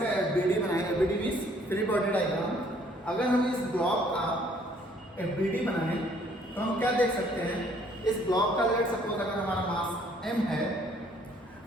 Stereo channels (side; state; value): both; normal; correlation 0.62